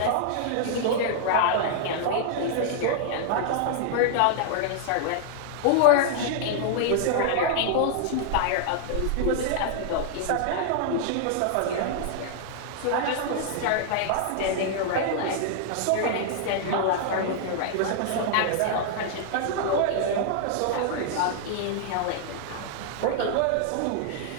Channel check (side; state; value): both; different; correlation -0.01